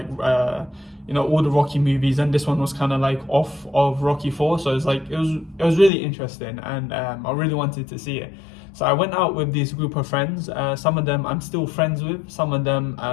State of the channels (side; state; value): right; drops out; at 5.9 s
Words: all the Rocky movies, and this one was kind of like off of Rocky 4, so it's like it was really interesting, and I really wanted to see it. So I went out with this group of friends. Some of them I'm still friends with, some of them